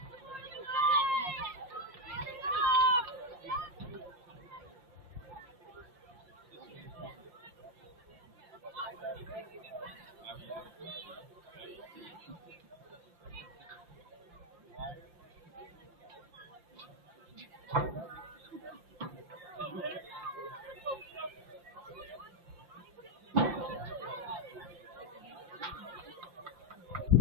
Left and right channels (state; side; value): late; left; 5.8 ms